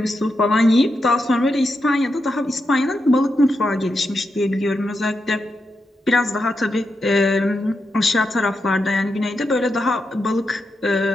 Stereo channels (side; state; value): both; normal; correlation 0.86